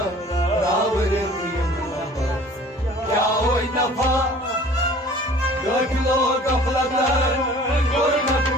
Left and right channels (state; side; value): normal; both; correlation 0.48